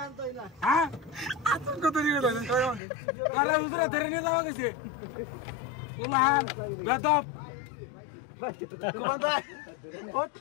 না হ্যাঁ আতঙ্ক কত নিয়ে দাও আরে হুজুরা ধরে নিয়ে যাওয়া গেছে উলান বেদব কুমান্দা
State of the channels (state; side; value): drops out; right; at 2.8 s